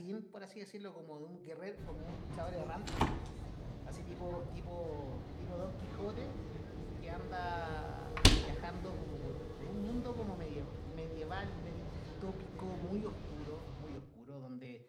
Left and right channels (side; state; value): both; identical; correlation 1.00